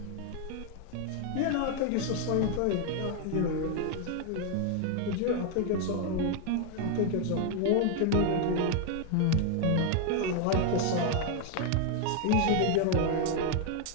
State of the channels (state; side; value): different; both; correlation 0.01